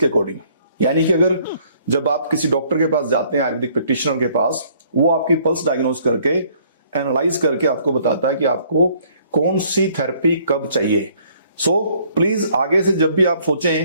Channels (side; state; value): both; inverted; correlation -0.62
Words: अकॉर्डिंग। यानी कि अगर जब आप किसी डॉक्टर के पास जाते हैं, आयुर्वेदिक प्रैक्टिशनर के पास, वो आपकी पल्स डायग्नोज करके एनालाइज करके आपको बताता है कि आपको कौन सी थेरेपी कब चाहिए। सो प्लीज आगे से जब भी आप